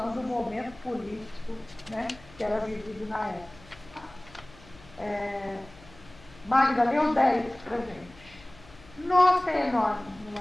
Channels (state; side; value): noise; left; hum, 23 dB below the sound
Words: do momento político, né, que era vivido na época. Magda, leu 10 pra gente. Nossa, é enorme, não